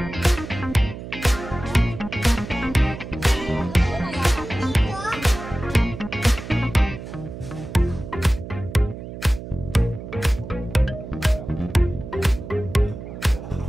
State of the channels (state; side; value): noise; right; hum, 10 dB below the sound